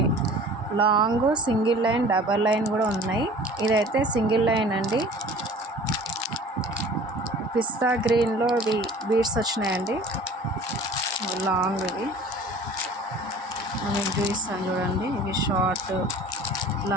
long, single line, double line కూడా ఉన్నాయి. ఇదైతే సింగిల్ లైన్ అండి. పిస్తా గ్రీన్లో బీడ్స్ వచ్చినాయండి, లాంగ్. ఇవి మీకు చూపిస్తాను చూడండి. ఇవి షార్ట్,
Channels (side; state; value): both; normal; correlation 0.45